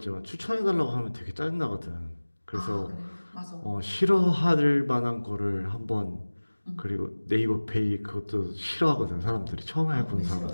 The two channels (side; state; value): both; inverted; correlation -1.00